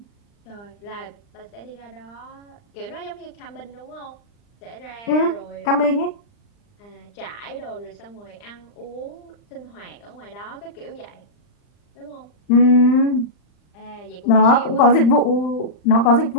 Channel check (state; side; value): late; right; 39 ms